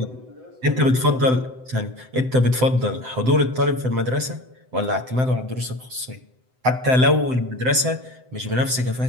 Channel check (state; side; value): late; left; 7.8 ms